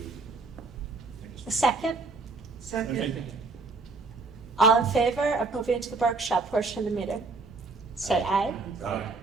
A second? okay. All in favor of moving to the workshop portion of the meeting? Say aye. Aye.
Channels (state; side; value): quieter; left; 3.9 dB